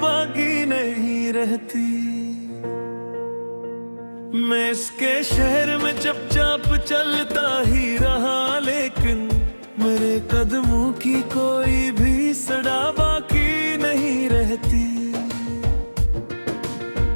बाकी नहीं रहती। मैं इसके शहर में चुपचाप चलता ही रहा, लेकिन मेरे कदमों की कोई भी सड़ा बाकी नहीं रहती।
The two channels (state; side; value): inverted; both; correlation -1.00